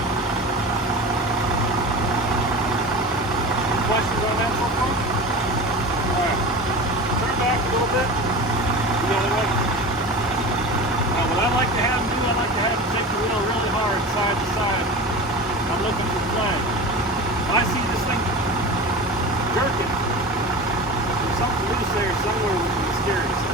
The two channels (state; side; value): normal; both; correlation 0.31